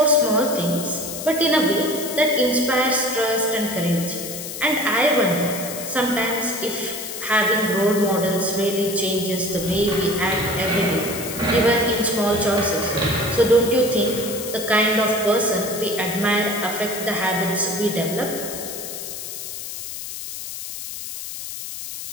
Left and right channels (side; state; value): left; noise; hiss, 8 dB below the sound